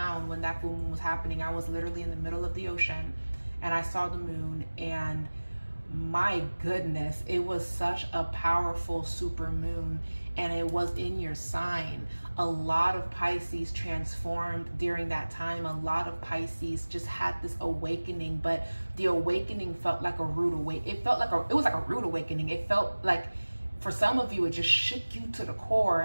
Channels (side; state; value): both; inverted; correlation -1.00